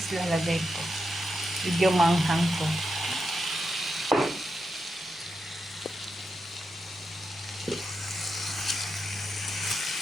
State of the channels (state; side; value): normal; both; correlation 0.86